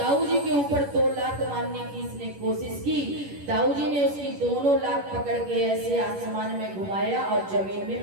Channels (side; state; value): left; late; 10 ms